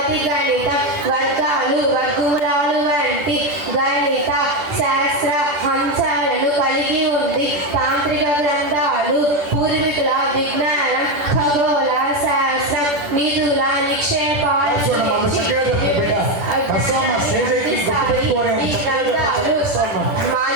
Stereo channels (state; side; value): late; left; 10 ms